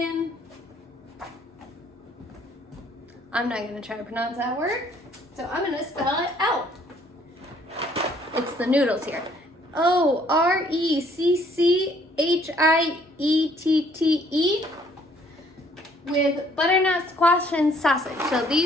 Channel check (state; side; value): normal; both; correlation 0.62